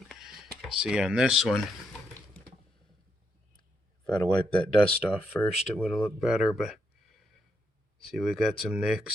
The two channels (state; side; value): normal; both; correlation 0.79